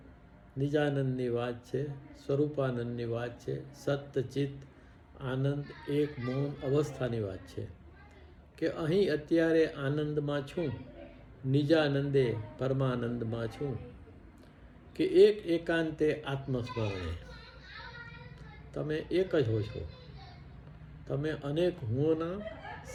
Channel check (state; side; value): identical; both; correlation 1.00